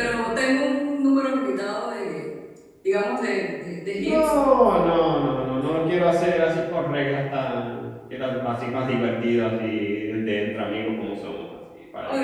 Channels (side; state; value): both; identical; correlation 1.00